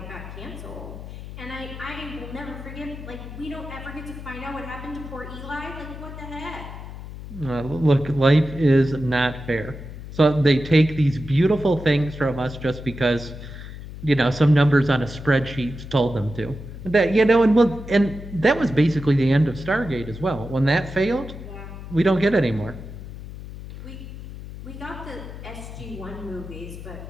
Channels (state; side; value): noise; left; hum, 12 dB below the sound